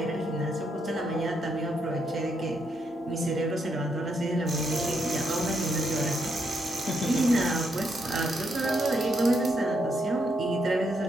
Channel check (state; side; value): normal; both; correlation 0.78